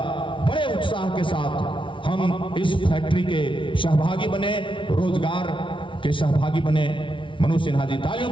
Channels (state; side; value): late; right; 0.25 ms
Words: बड़े उत्साह के साथ हम इस फैक्ट्री के सहभागी बने, रोजगार के सहभागी बने। मनोज सिन्हा जी, तालियों